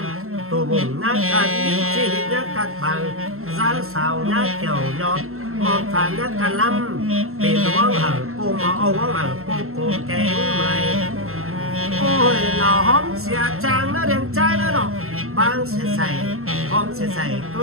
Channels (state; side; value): late; left; 0.62 ms